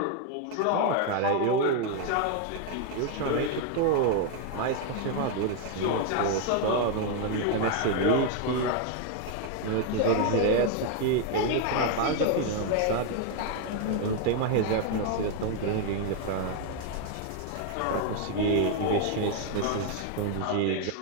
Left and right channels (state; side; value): different; both; correlation 0.01